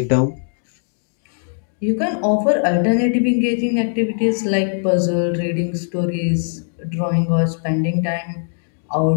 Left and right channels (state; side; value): silent; right; digital silence